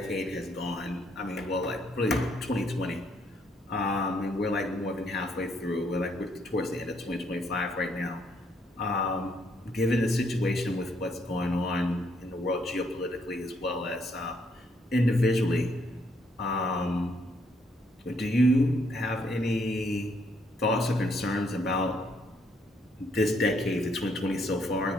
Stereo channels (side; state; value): both; normal; correlation 0.71